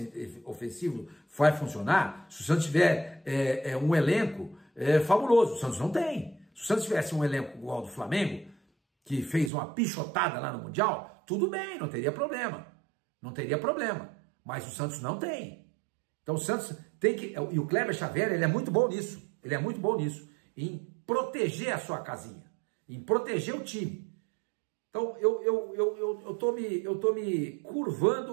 ofensivo vai funcionar se o Santos tiver um elenco fabuloso. O Santos não tem. Se o Santos tivesse um elenco igual ao do Flamengo, que fez uma pichotada lá no Mundial, tudo bem, não teria problema. Não teria problema. Mas o Santos não tem. Então o Santos tem que... E o Kleber Xavier, ele é muito bom nisso. Ele é muito bom nisso. Em proteger a sua casinha. Em proteger o time. Então eu tô me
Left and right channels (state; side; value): drops out; left; at 9.5 s